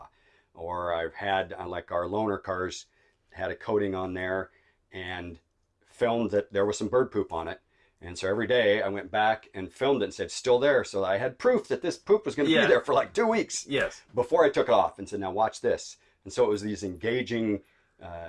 Or I've had, like our loaner cars, had a coating on there and filmed that there was some bird poop on it. And so every day I went back and filmed it and said, still there. So I had proof that this poop was going to be there for like 2 weeks. Yes. Before I took it off, and said, now watch this. And so it was these engaging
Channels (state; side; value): identical; both; correlation 1.00